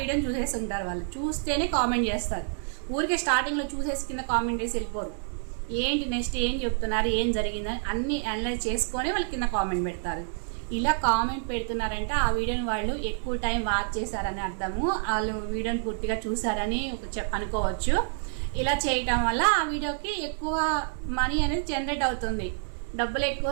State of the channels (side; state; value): left; silent; 59 dB below the other